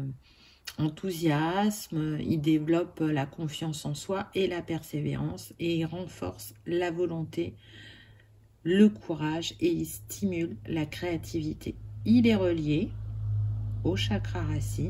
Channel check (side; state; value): both; identical; correlation 1.00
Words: enthousiasme, il développe la confiance en soi et la persévérance, et il renforce la volonté, le courage, et il stimule la créativité. Il est relié au chakra